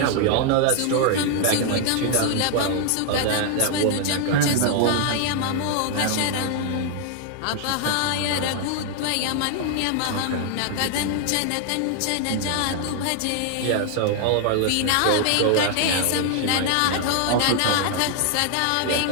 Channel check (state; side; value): different; both; correlation 0.00